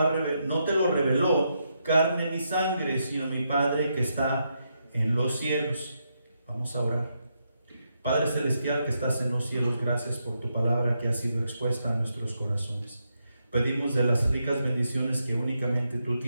reveló carne ni sangre, sino mi Padre que está en los cielos. Vamos a orar. Padre celestial que estás en los cielos, gracias por tu palabra que ha sido expuesta a nuestros corazones. Pedimos de las ricas bendiciones que únicamente tú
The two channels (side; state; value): both; inverted; correlation -0.82